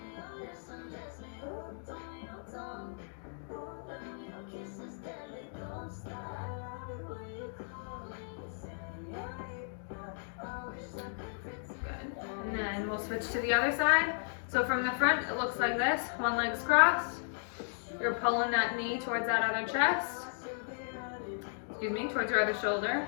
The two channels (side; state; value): right; silent; digital silence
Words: Good. And then we'll switch to the other side. So from the front, it looks like this. One leg's crossed. You're pulling that knee towards that other chest. Excuse me, towards your other shoulder.